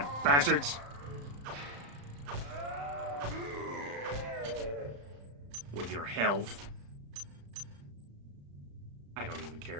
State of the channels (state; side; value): late; left; 35 ms